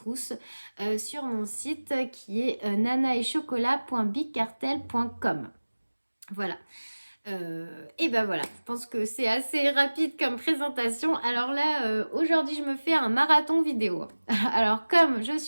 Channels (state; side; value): inverted; both; correlation -1.00